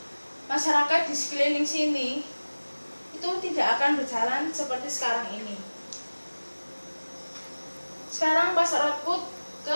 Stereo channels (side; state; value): both; inverted; correlation -1.00